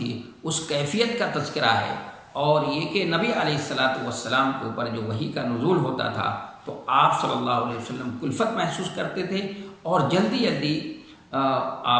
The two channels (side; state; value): both; identical; correlation 1.00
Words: اس کیفیت کا تذکرہ ہے، اور یہ کہ نبی علیہ الصلاۃ والسلام کے اوپر جو وحی کا نزول ہوتا تھا تو آپ صلی اللہ علیہ وسلم کلفت محسوس کرتے تھے، اور جلدی جلدی